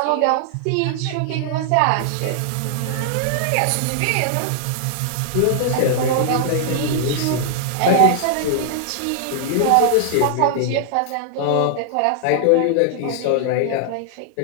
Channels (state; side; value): different; both; correlation -0.01